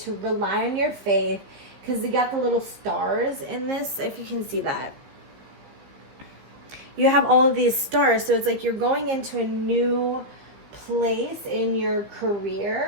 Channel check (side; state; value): left; late; 15 ms